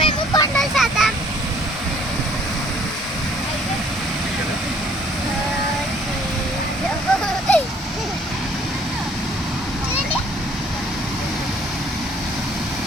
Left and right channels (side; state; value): both; normal; correlation 0.59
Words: మేము కొండలు చేద్దాం.